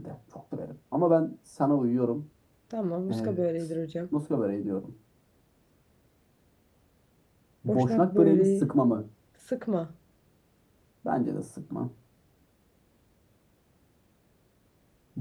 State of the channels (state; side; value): identical; both; correlation 1.00